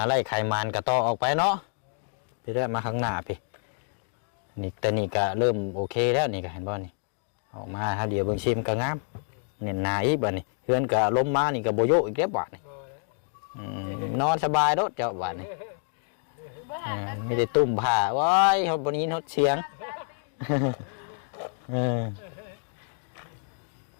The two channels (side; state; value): right; silent; 59 dB below the other